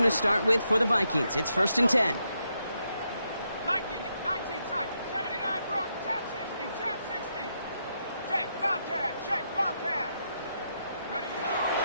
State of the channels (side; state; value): both; inverted; correlation -0.80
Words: to start with for the Vikings. It's first and 10. 19 tight, 79 Brook, tap 60, tap 60. Check, Bobcat, check, Bobcat. Ready?